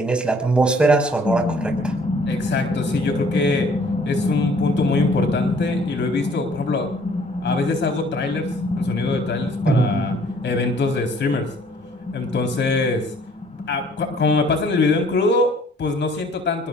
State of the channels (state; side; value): normal; both; correlation 0.58